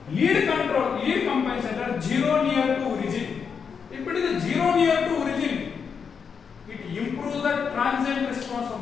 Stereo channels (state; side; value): quieter; right; 6.3 dB